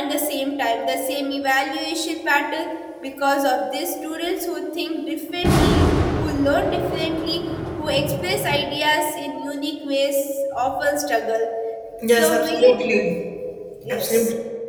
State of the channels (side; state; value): both; identical; correlation 1.00